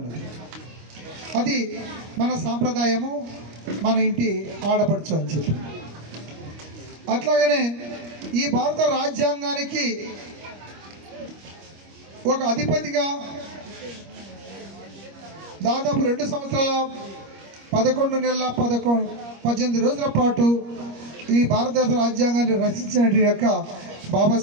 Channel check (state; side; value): late; left; 25 ms